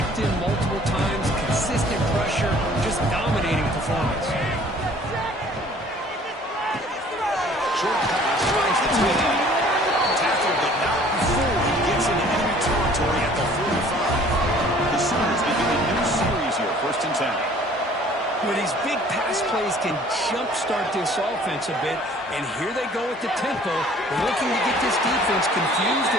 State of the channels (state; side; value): normal; both; correlation 0.53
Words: him multiple times. Consistent pressure. Just dominating performance. Short pass finds the tight end. Tackled, but not before he gets into enemy territory at the 45. The Sooners begin a new series here, 1st and 10. Well, these big pass plays can jumpstart this offense a bit, and here they go at the tempo, looking to get this defense confused